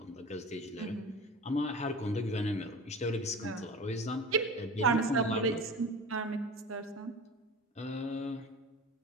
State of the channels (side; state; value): both; normal; correlation 0.35